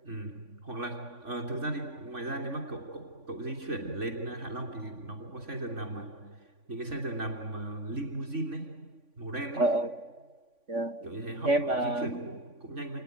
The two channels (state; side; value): late; left; 3.5 ms